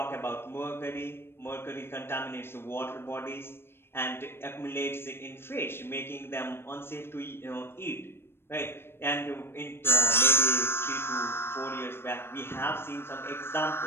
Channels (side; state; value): right; late; 0.12 ms